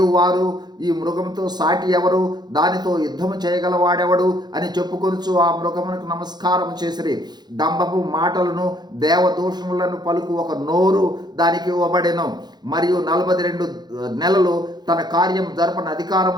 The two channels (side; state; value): left; late; 0.20 ms